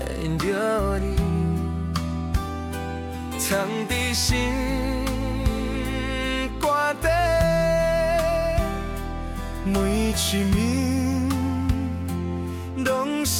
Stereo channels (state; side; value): identical; both; correlation 1.00